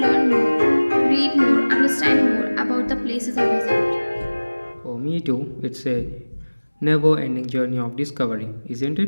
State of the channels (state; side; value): inverted; both; correlation -1.00